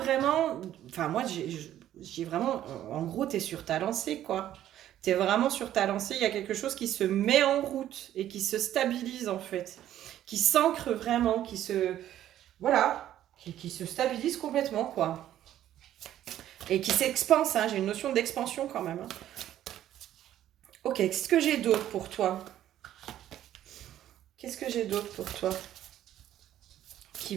enfin moi j'ai vraiment, en gros t'es sur ta lancée quoi. T'es vraiment sur ta lancée, il y a quelque chose qui se met en route et qui se stabilise en fait, qui s'ancre vraiment, qui se stabilise complètement quoi. Et qui s'expanse, hein, j'ai une notion d'expansion quand même. Hein. Ok, qu'est-ce que j'ai d'autre pour toi ? Qu'est-ce que j'ai d'autre pour toi ? Qui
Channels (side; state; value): left; quieter; 12.1 dB